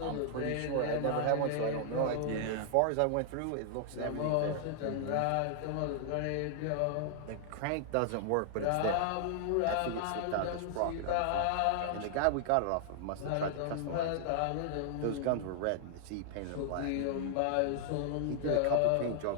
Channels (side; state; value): both; different; correlation -0.01